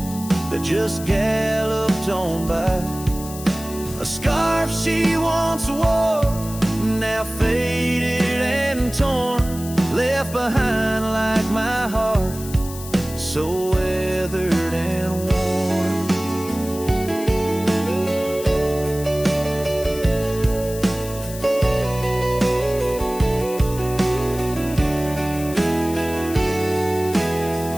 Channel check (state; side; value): noise; left; hiss, 13 dB below the sound